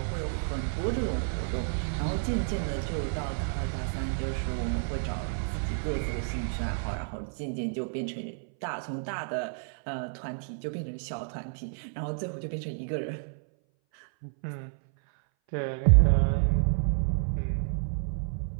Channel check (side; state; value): left; silent; 58 dB below the other